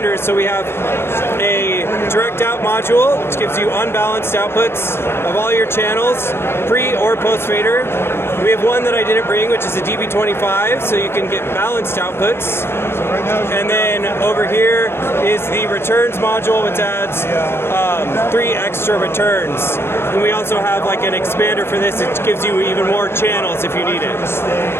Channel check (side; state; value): right; late; 0.12 ms